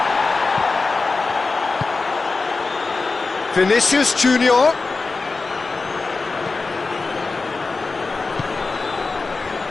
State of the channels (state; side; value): quieter; right; 3.9 dB